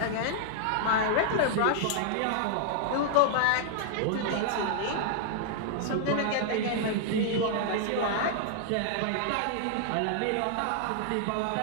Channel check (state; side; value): different; both; correlation -0.01